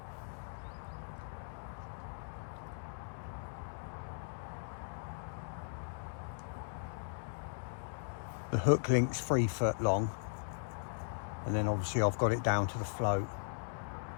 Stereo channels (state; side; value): silent; right; digital silence